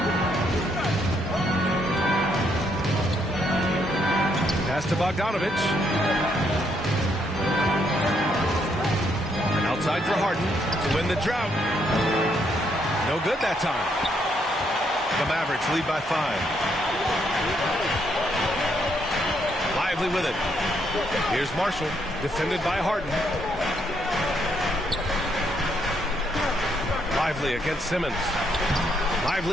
Pass to Bogdanovich. And outside for Harden to win the drought. No good that time. The Mavericks lead by 5. Lively with it. Here's Marshall, defended by Harden. Lively against Simmons.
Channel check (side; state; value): both; normal; correlation 0.74